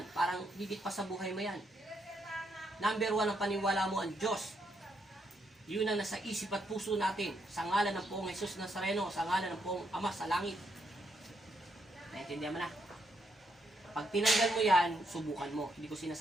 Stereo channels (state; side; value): normal; both; correlation 0.78